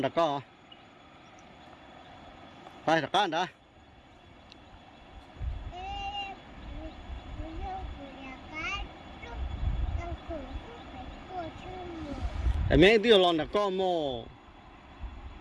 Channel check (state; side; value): identical; both; correlation 1.00